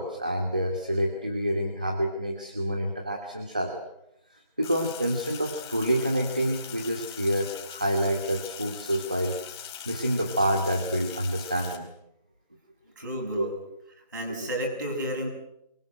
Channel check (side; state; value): both; inverted; correlation -0.73